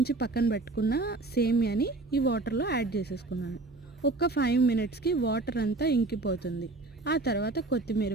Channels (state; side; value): quieter; left; 3.2 dB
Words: పక్కన పెట్టుకున్న సేమియాని ఈ వాటర్లో యాడ్ చేసేసుకున్నాను. ఒక 5 మినిట్స్కి వాటర్ అంతా ఇంకిపోతుంది. ఆ తర్వాత కొత్తిమీర